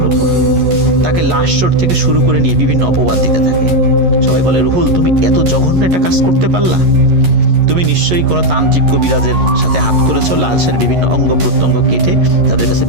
উপর। তাকে লাশ চোট থেকে শুরু করে নিয়ে বিভিন্ন অপবাদ দিতে থাকে। সবাই বলে, রুহুল তুমি এত জঘন্য একটা কাজ করতে পারলা? তুমি নিশ্চয়ই কোনো তান্ত্রিক কবিরাজের সাথে হাত করেছো, লাশের বিভিন্ন অঙ্গ প্রত্যঙ্গ কেটে তাদের কাছে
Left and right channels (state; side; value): late; left; 11 ms